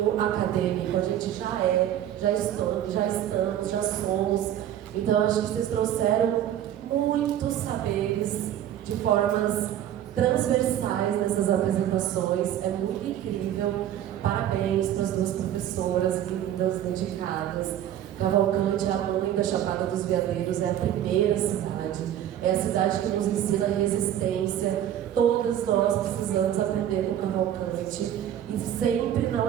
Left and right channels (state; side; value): quieter; left; 11.1 dB